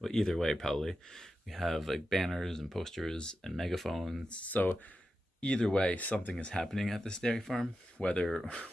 either way, probably we have like banners and posters and megaphones. So either way, something is happening at this dairy farm, whether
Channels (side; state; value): both; normal; correlation 0.90